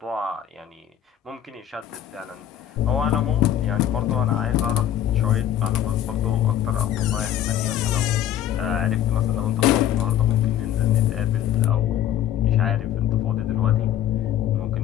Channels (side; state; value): right; quieter; 11.0 dB